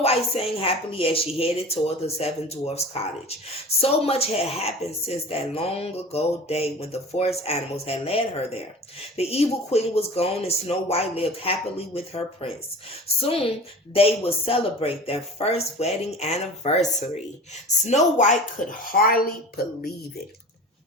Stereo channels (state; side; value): normal; both; correlation 0.38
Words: White sang happily as she headed toward the Seven Dwarfs' cottage. So much had happened since that long ago day when the forest animals had led her there. The evil queen was gone and Snow White lived happily with her prince. Soon they would celebrate their first wedding anniversary. Snow White could hardly believe it.